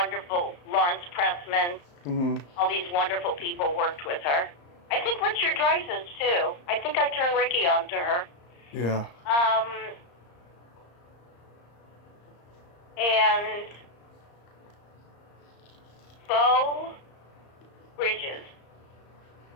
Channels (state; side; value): late; right; 34 ms